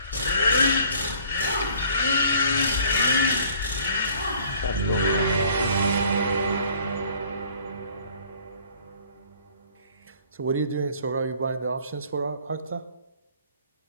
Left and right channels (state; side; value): inverted; both; correlation -0.54